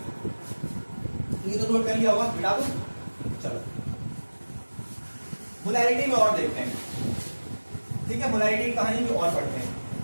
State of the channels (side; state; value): both; inverted; correlation -1.00